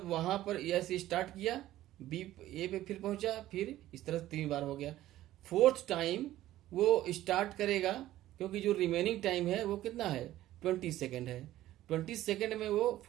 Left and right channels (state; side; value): quieter; left; 14.4 dB